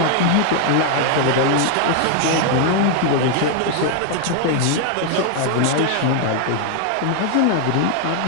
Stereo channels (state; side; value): different; both; correlation 0.00